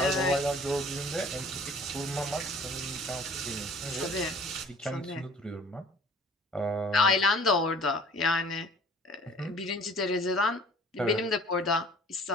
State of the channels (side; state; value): both; normal; correlation 0.50